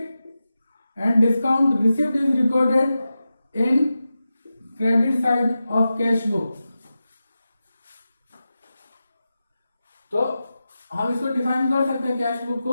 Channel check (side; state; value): both; inverted; correlation -0.92